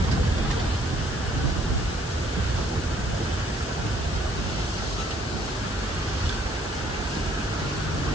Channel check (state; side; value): noise; left; hiss, 12 dB below the sound